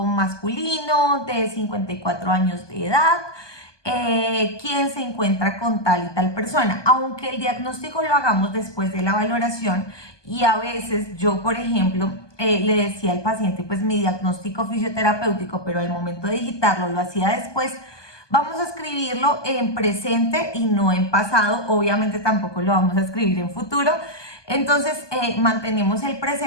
masculino, de 54 años de edad, quién se encuentra con tal y tal persona. Aunque el diagnóstico lo hagamos después de la valoración, y a veces yo, por ejemplo, le decía al paciente pues mi diagnóstico fisioterapéutico, pero al momento de digitarlo lo hacía después. Vamos a escribirlo en presente y no en pasado, obviamente tampoco lo vamos a escribir en futuro. Entonces mantenemos el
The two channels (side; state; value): right; late; 1.2 ms